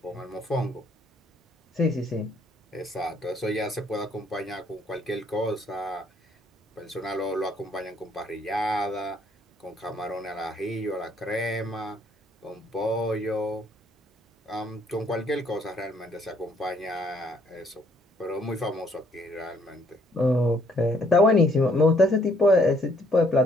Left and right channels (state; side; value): normal; both; correlation 0.66